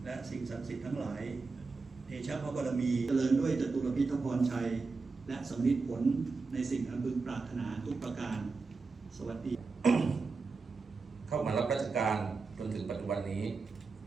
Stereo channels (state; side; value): quieter; left; 4.3 dB